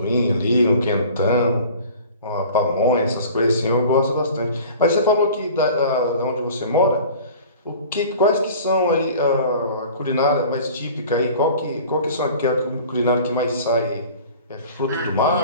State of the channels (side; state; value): both; inverted; correlation -0.44